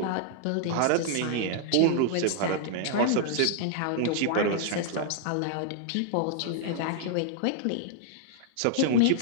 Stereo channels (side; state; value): both; different; correlation -0.01